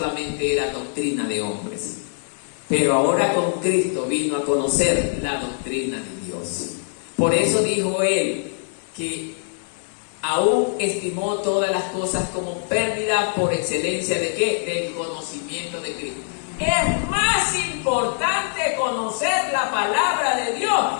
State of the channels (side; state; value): right; silent; 62 dB below the other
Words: era doctrina de hombres. Pero ahora con Cristo vino a conocer la doctrina de Dios. Por eso dijo él que aún estimó todas las cosas como pérdida por excelencia ¿de qué? Del conocimiento de Cristo. Es más importante conocer la palabra de Dios